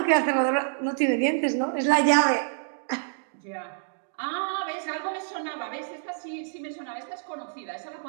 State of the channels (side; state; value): left; silent; digital silence